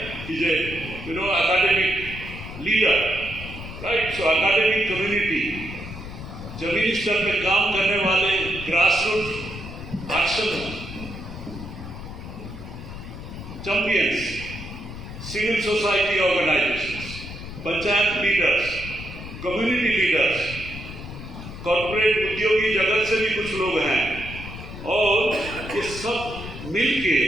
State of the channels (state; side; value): noise; left; rumble, 11 dB below the sound